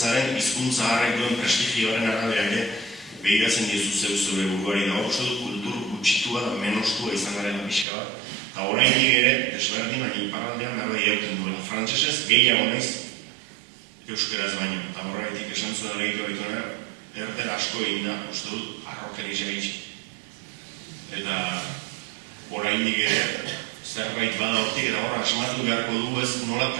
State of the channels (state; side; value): drops out; left; at 7.9 s